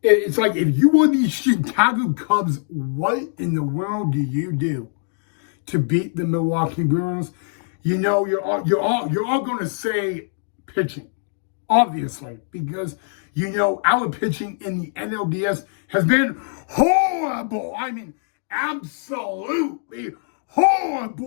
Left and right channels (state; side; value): silent; right; digital silence